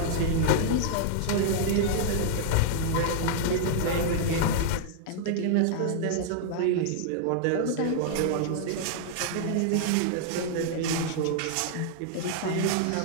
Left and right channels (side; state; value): both; different; correlation -0.01